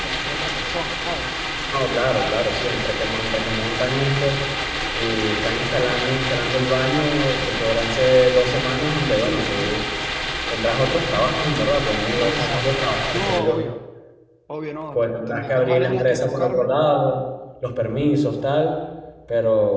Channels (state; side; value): identical; both; correlation 1.00